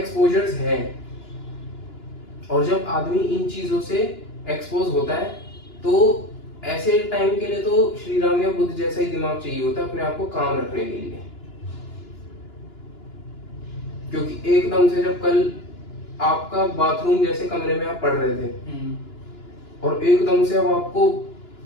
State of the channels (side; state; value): right; late; 2.9 ms